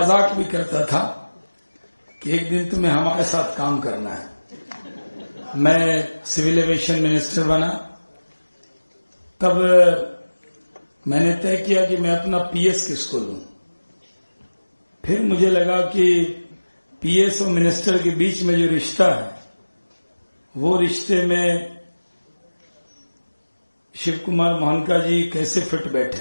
भी करता था कि एक दिन तुम्हें हमारे साथ काम करना है। मैं सिविल एविएशन मिनिस्टर बना तब मैंने तय किया कि मैं अपना पीएस किसको लूं। फिर मुझे लगा कि पीएस और मिनिस्टर के बीच में जो रिश्ता है वो रिश्ते में शिव कुमार मोहनका जी कैसे फिट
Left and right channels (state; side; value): inverted; both; correlation -1.00